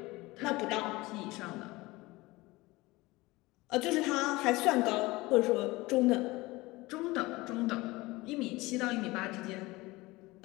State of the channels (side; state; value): right; quieter; 21.1 dB